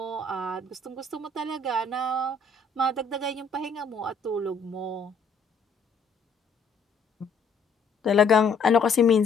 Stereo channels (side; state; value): right; quieter; 4.1 dB